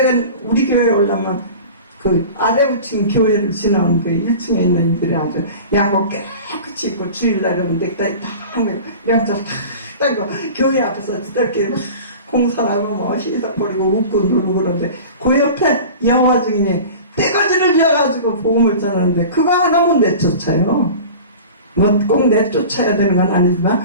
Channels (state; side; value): inverted; both; correlation -0.37